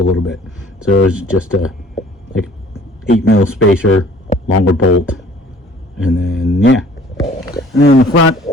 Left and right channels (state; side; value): normal; both; correlation 0.53